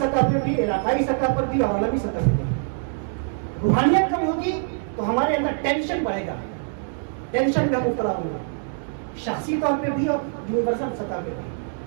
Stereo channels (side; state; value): left; silent; digital silence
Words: پہ بھی، علاقائی سطح پر بھی اور عالمی سطح پہ بھی. روحانیت کم ہوگی تو ہمارے اندر ٹینشن بڑھے گا، ٹینشن کا مبتلا ہوں گا، شخصی طور پہ بھی اور یونیورسل سطح پہ بھی.